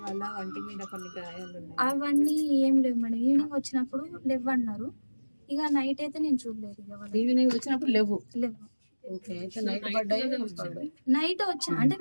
వాళ్ళ వంటి మీద కొన్ని గాయాలు అవన్నీ ఏం లేవు మేడం. ఈవినింగ్ వచ్చినప్పుడు లేవు అన్నారు. ఇక నైట్ అయితే నేను చూడలేదు. ఇక ఈవినింగ్ వచ్చినప్పుడు లేవు. ఓకే అయితే నైట్ పడ్డాయి నైట్ వచ్చా అంటే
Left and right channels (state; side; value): inverted; both; correlation -1.00